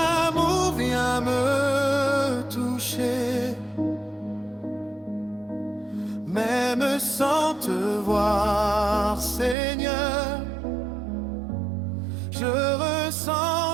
vient me toucher. Même sans te voir, Seigneur, je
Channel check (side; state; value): left; drops out; at 9.6 s